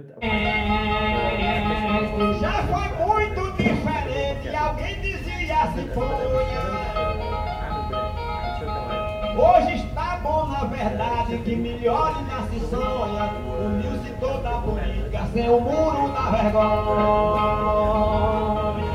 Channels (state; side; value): identical; both; correlation 1.00